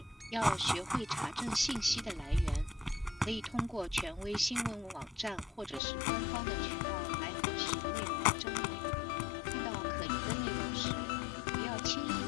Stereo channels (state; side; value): drops out; right; at 5.8 s